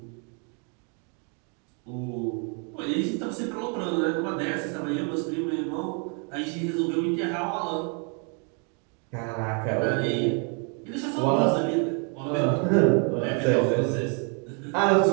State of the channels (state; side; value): quieter; left; 38.2 dB